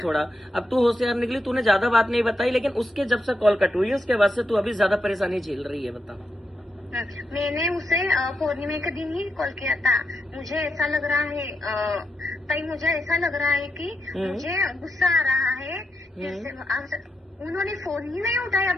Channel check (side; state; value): both; normal; correlation 0.84